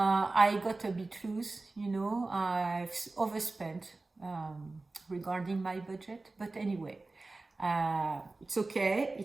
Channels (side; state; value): left; quieter; 3.3 dB